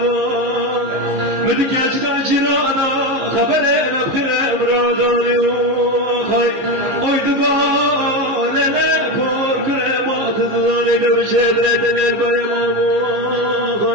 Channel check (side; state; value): left; late; 15 ms